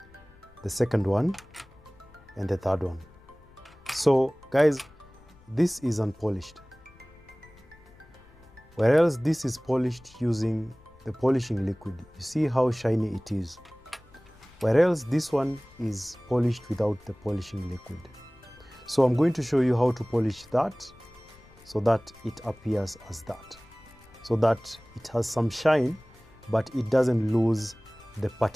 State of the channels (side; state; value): left; noise; rumble, 25 dB below the sound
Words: the second one, and the third one. So guys, this is unpolished, whereas this is polished using the polishing liquid. You see how shiny it is, whereas this one is polished without the polishing liquid. So I'm going to show you how to polish that so that it appears as that, so that it has some shine but it doesn't lose the